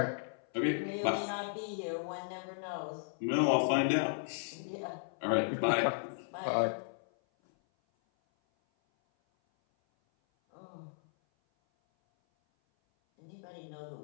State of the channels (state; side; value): silent; right; 54 dB below the other